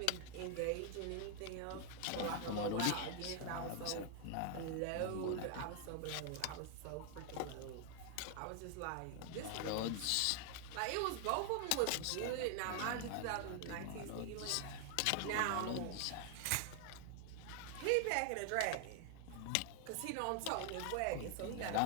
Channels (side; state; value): both; different; correlation 0.00